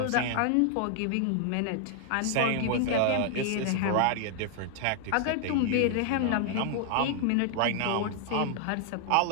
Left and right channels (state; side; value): different; both; correlation 0.00